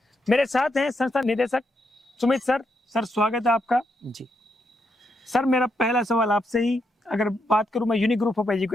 मेरे साथ हैं संस्था निदेशक सुमित सर। सर स्वागत है आपका। जी सर मेरा पहला सवाल आपसे ही अगर बात करूं मैं यूनिक ग्रुप ऑफ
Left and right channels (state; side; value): normal; both; correlation 0.80